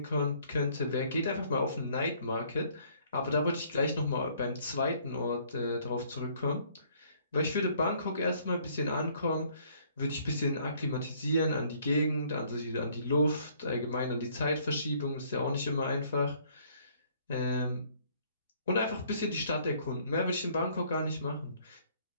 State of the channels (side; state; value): both; inverted; correlation -0.62